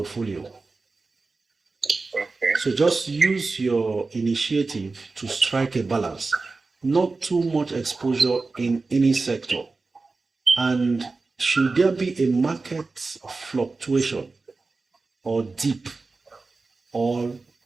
So just use your initiative to strike a balance, not too much exposure in any sector. And should there be a market fluctuation or dip or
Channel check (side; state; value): left; quieter; 3.8 dB